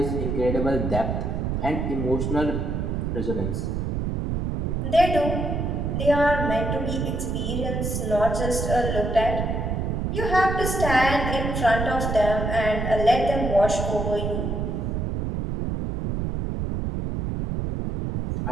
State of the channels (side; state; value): right; noise; rumble, 1 dB below the sound